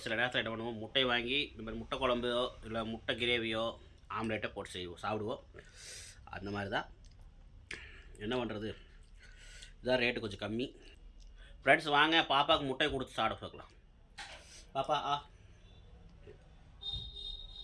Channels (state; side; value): identical; both; correlation 1.00